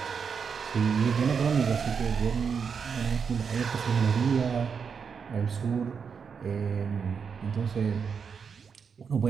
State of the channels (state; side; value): quieter; left; 6.2 dB